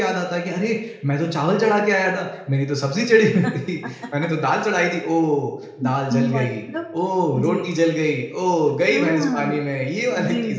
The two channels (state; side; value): identical; both; correlation 1.00